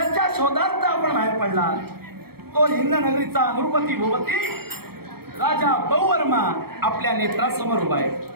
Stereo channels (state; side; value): late; left; 0.95 ms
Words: शोधार्थ आपण बाहेर पडला तो हिंद नगरीचा द्रौपदी भूपती राजा बहुवर्मा आपल्या नेत्रासमोर उभा आहे.